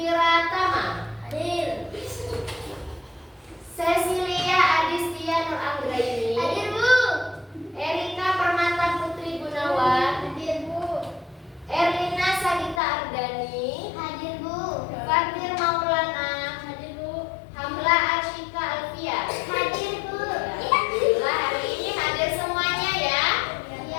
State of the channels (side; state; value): right; drops out; at 12.8 s